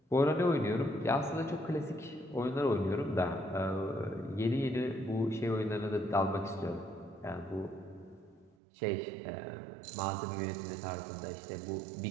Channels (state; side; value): drops out; left; at 8.6 s